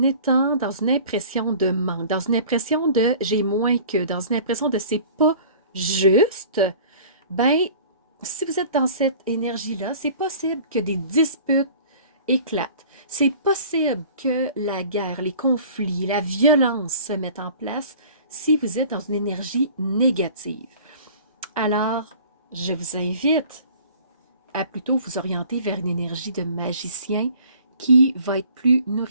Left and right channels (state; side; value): inverted; both; correlation -0.47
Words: étant dans une impression de manque, dans une impression de j'ai moins que, dans une impression de c'est pas juste, ben si vous êtes dans cette énergie-là, c'est possible que des disputes éclatent. C'est possible que la guerre, les conflits, la violence se mettent en place si vous êtes dans une énergie négative. Alors, je vous invite à plutôt vous orienter vers une énergie de magicien qui va être plus